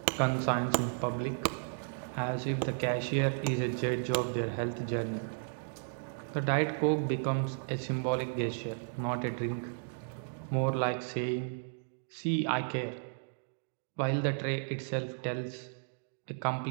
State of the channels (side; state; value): left; silent; digital silence